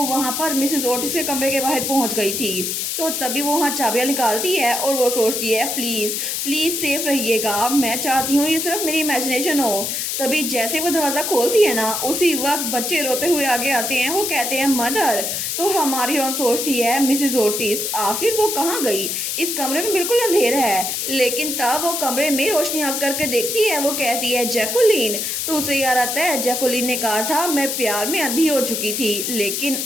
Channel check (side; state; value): left; noise; hiss, 2 dB below the sound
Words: वहां पर मिसेस ओटिस के कमरे के बाहर पहुंच गई थी। तो तभी वो वहाँ चाबियाँ निकालती है और वो सोचती है प्लीज़ प्लीज़ सेफ रहिएगा, मैं चाहती हूँ ये सिर्फ मेरी इमेजिनेशन हो। तभी जैसे वो दरवाज़ा खोलती है ना उसी वक्त बच्चे रोते हुए आगे आते हैं। वो कहते हैं मदर। तो हमारी रोन सोचती है मिसेस ओटिस आखिर वो कहाँ गई, इस कमरे में बिल्कुल अंधेरा है। लेकिन तब वो कमरे में रोशनी आग करके देखती है। वो कहती है जैकुलिन। तो उसे याद आता है जैकुलिन ने कहा था मैं प्यार में अंधी हो चुकी थी, लेकिन